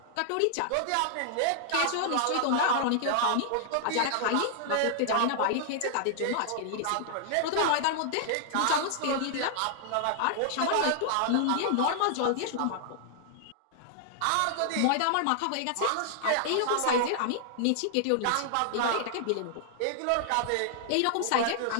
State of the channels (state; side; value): different; both; correlation -0.01